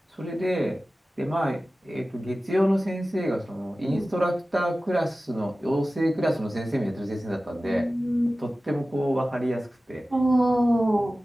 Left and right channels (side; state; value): both; normal; correlation 0.96